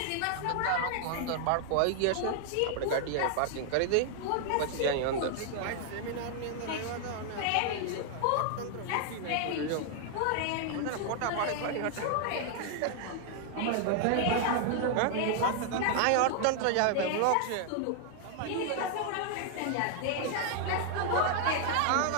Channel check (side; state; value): both; different; correlation 0.00